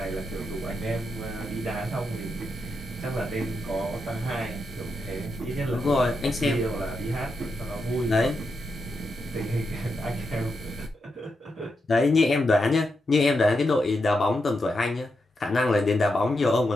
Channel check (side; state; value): both; normal; correlation 0.85